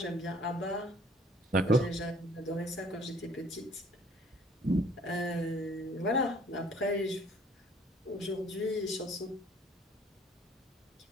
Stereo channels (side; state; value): both; normal; correlation 0.57